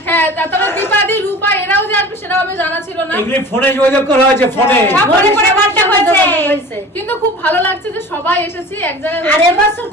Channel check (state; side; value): normal; both; correlation 0.39